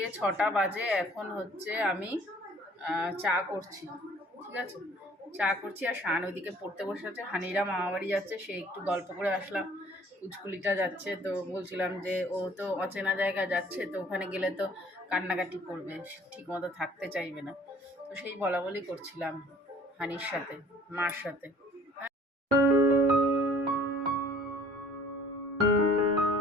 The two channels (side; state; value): both; normal; correlation 0.54